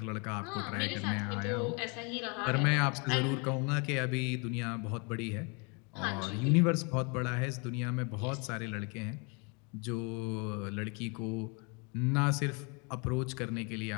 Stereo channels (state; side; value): quieter; right; 32.8 dB